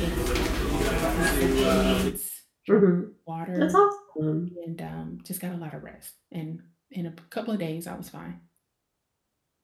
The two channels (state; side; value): identical; both; correlation 1.00